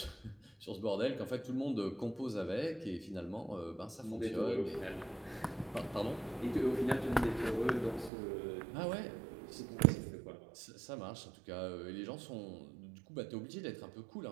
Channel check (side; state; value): left; drops out; at 8.1 s